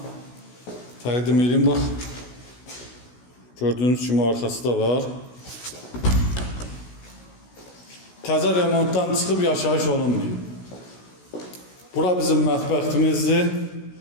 təqdim edeyim, bax. Gördüğünüz kimi arkası da var. Təzə remontdan çıxıb yaşayış olunmuyor. Bura bizim mətbəximizdir.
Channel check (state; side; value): late; right; 16 ms